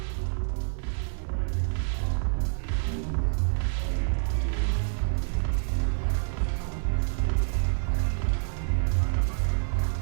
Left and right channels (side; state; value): left; silent; 60 dB below the other